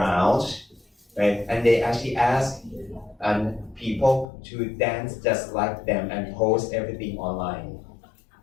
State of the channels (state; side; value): drops out; right; at 4.2 s